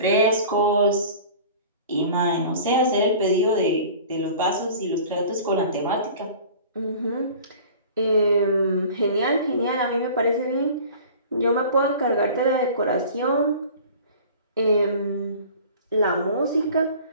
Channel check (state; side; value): inverted; both; correlation -0.43